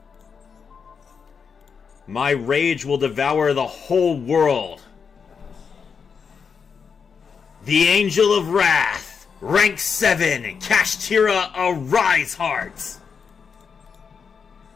My rage will devour the whole world. The Angel of Wrath, rank 7, Kashtira, Arise Heart.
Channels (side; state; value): right; quieter; 6.1 dB